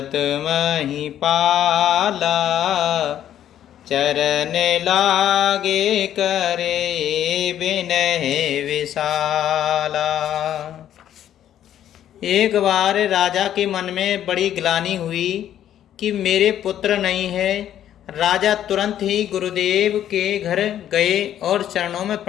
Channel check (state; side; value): quieter; right; 11.0 dB